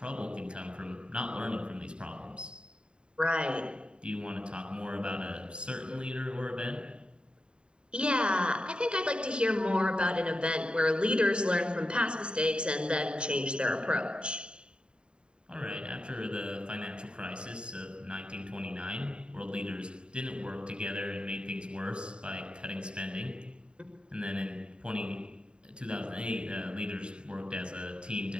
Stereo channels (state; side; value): late; left; 0.051 ms